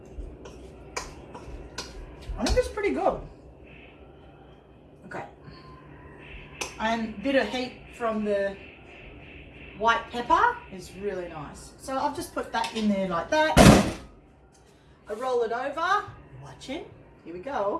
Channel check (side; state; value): both; identical; correlation 1.00